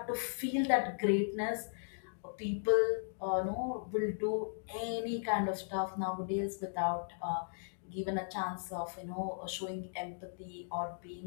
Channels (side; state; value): right; silent; digital silence